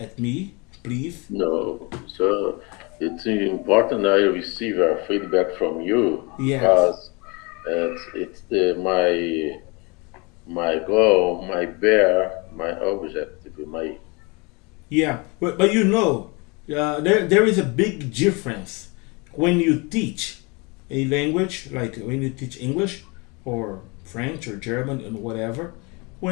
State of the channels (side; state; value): right; quieter; 28.8 dB